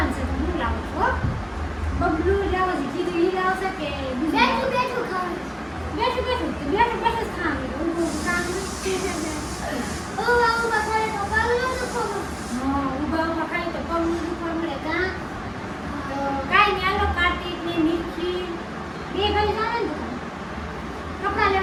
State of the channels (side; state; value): both; identical; correlation 1.00